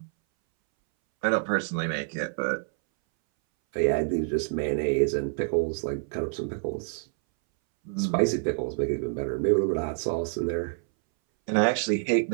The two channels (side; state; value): left; silent; 60 dB below the other